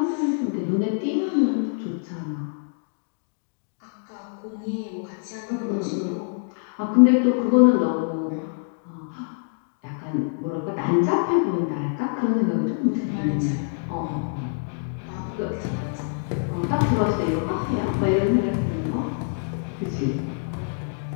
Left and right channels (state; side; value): silent; right; digital silence